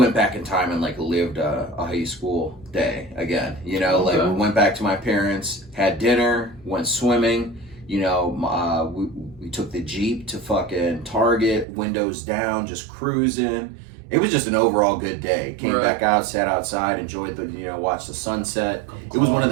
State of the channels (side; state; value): left; drops out; at 11.7 s